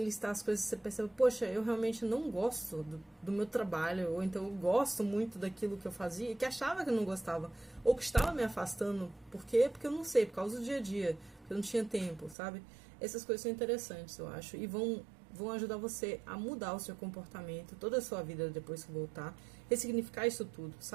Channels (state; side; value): drops out; left; at 12.4 s